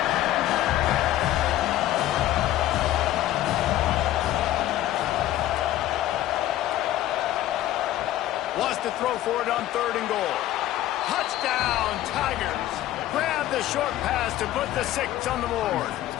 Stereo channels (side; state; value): right; quieter; 13.9 dB